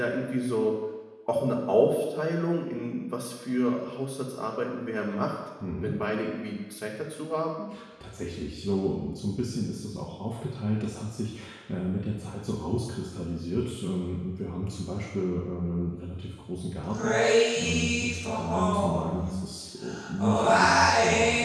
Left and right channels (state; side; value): identical; both; correlation 1.00